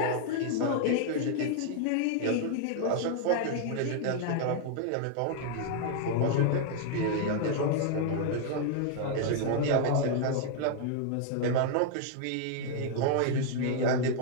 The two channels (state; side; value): different; both; correlation 0.00